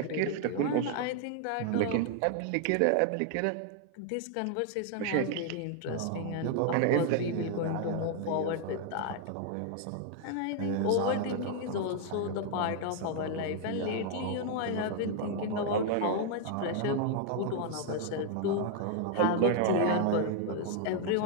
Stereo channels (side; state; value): both; different; correlation 0.00